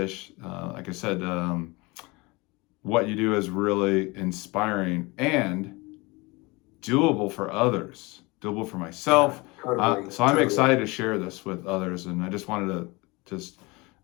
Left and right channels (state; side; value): quieter; right; 25.1 dB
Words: Like I said, what you do is really inspiring and doable for others, doable for myself. So I'm excited to share this with others, and I just wanted to